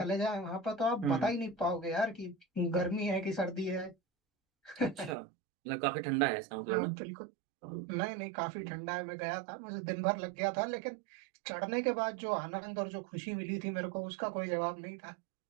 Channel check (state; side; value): drops out; left; at 5.2 s